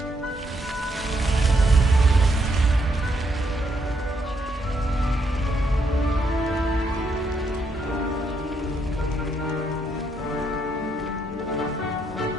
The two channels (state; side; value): normal; both; correlation 0.76